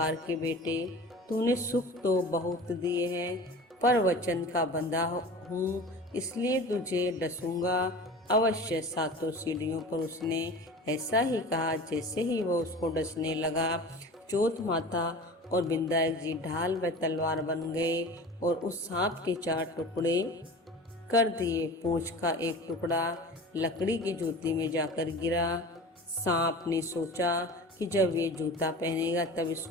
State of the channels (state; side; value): normal; both; correlation 0.37